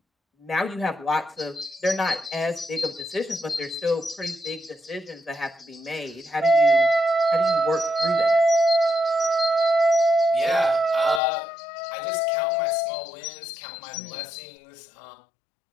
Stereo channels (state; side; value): drops out; right; at 11.2 s